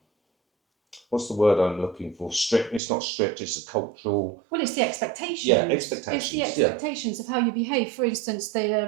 What's the word I'm looking for? Strict. It's not strict. It's a cultural. Well, it's the expectations. Yeah, expectations. It's the expectations of how you behave. For instance,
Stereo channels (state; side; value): drops out; left; at 2.8 s